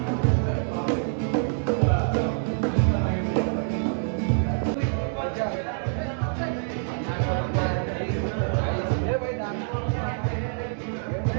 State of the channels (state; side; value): silent; left; digital silence